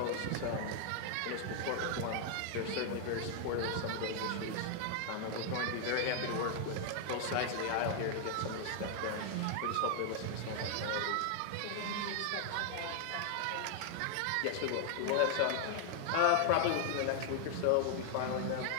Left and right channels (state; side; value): different; both; correlation 0.00